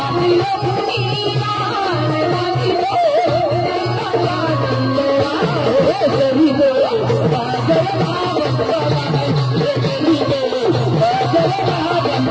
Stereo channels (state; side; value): identical; both; correlation 1.00